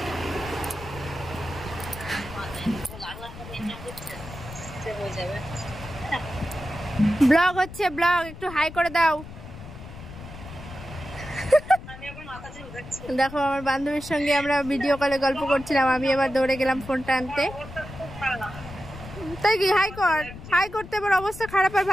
ব্লগ হচ্ছে ব্লগ, একটু হাই করে দাও। দেখো আমার বান্ধবীর সঙ্গে আমরা ভিডিও কলে গল্প করছিলাম, আমি এবার দৌড়ে গেলাম ফোনটা আনতে। তাই কি হাই কর, হাই করতে আবার অবস্থা খারাপ আর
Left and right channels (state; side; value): noise; left; rumble, 14 dB below the sound